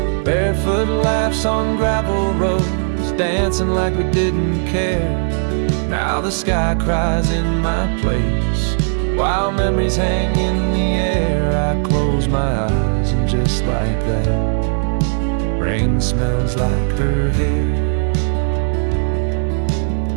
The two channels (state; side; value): silent; left; 68 dB below the other